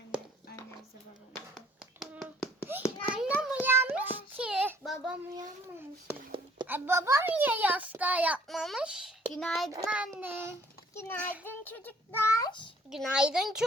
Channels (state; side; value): normal; both; correlation 0.58